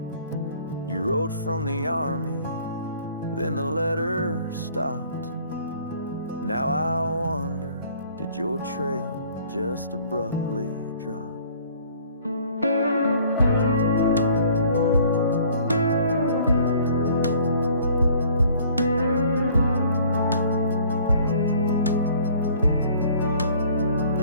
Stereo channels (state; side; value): inverted; both; correlation -0.55